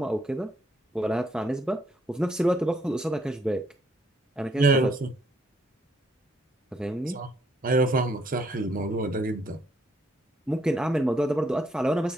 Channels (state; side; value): normal; both; correlation 0.69